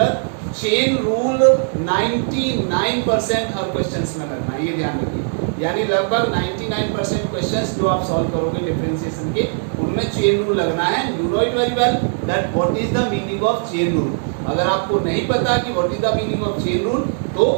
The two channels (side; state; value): left; silent; digital silence